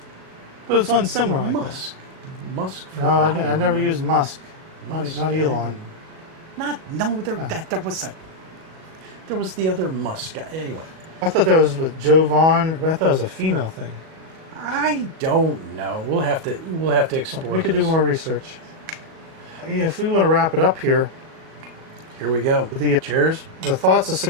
But it's one similar like Musk. Musk. that. No, I never used Musk. Not Elon. No, there was a. there was the other Musk guy. Anyway, I thought that was with Joe Vaughn, but I thought it was a female thing. I don't know. We'll have to explore. We could do this. more research. Yeah, if we want to wrap it up here, Here we go. Cheers. the thoughts of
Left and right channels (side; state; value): left; late; 37 ms